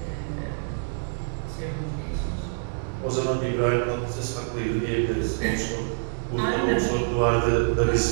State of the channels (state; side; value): silent; left; digital silence